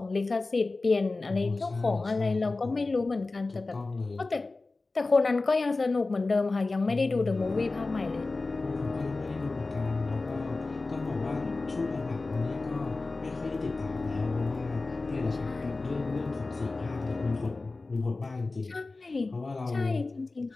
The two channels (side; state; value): right; quieter; 3.5 dB